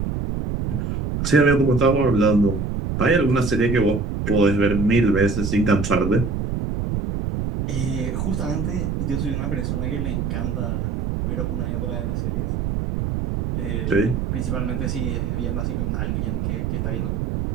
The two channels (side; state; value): right; noise; rumble, 1 dB below the sound